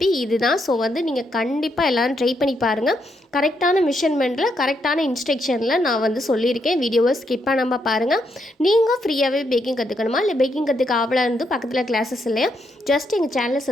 இதுதான். ஸோ வந்து நீங்கள் கண்டிப்பாக எல்லோரும் ட்ரை பண்ணி பாருங்கள். கரெக்டான மெஷர்மெண்ட்டில் கரெக்டான இன்ஸ்ட்ரக்ஷனில் நான் வந்து சொல்லியிருக்கேன். வீடியோவை ஸ்கிப் பண்ணாமல் பாருங்கள். நீங்கள் ஃப்ரீயாகவே பேக்கிங் கற்றுக்கணுமா, இல்லை பேக்கிங் கற்றுக்க ஆவலாக இருந்து பக்கத்தில் கிளாஸஸ் இல்லையா, ஜஸ்ட் எங்கள் சேனலை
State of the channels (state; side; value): normal; both; correlation 0.78